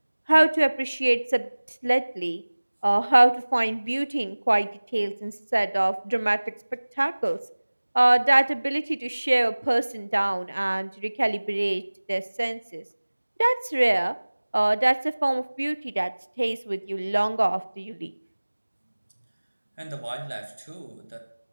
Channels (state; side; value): inverted; both; correlation -1.00